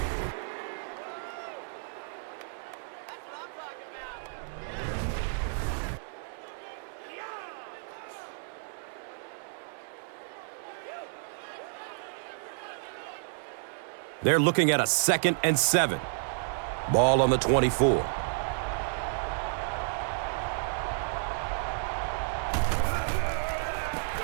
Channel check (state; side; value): silent; left; digital silence